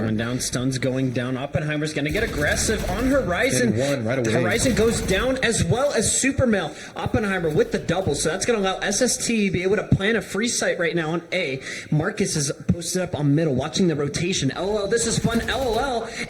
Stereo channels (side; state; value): both; identical; correlation 1.00